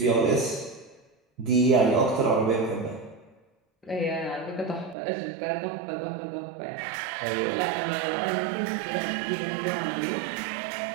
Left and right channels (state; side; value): drops out; left; at 5.0 s